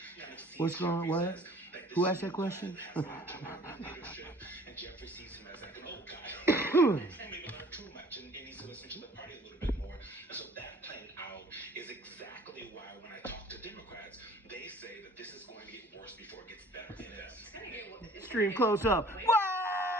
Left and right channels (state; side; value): normal; both; correlation 0.51